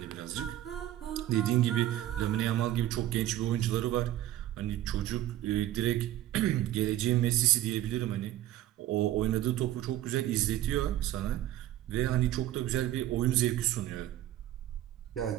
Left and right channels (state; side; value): quieter; left; 13.5 dB